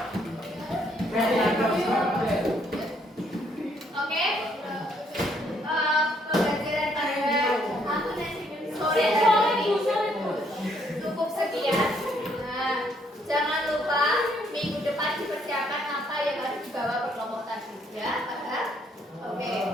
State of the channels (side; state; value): both; normal; correlation 0.69